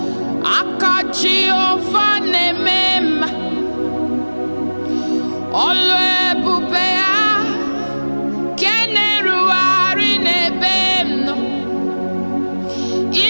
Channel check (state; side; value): inverted; both; correlation -1.00